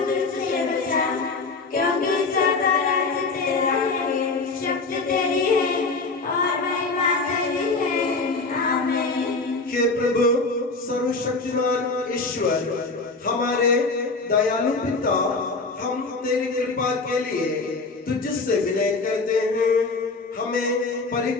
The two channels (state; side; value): quieter; right; 3.8 dB